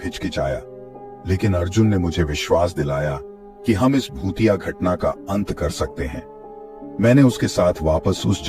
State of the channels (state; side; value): identical; both; correlation 1.00